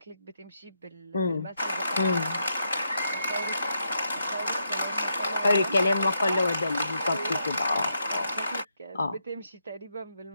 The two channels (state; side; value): inverted; both; correlation -0.81